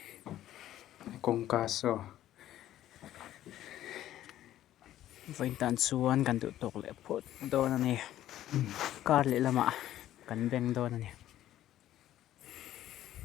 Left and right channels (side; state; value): right; quieter; 13.0 dB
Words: công ca so vậy tan suan cần tự tộc lệ phốt đó là này card lệ là mạ cần bèn đó là này